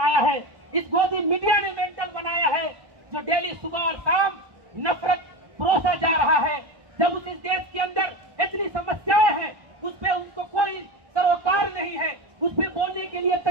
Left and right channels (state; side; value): late; left; 1.1 ms